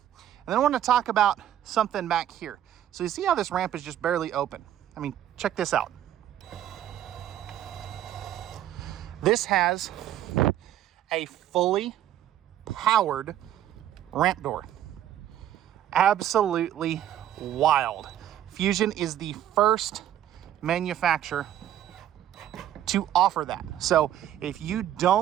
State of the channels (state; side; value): quieter; left; 11.6 dB